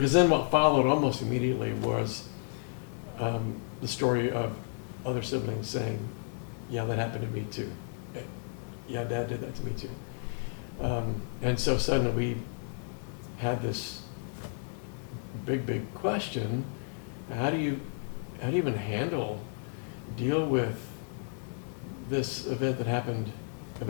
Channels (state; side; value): silent; right; 56 dB below the other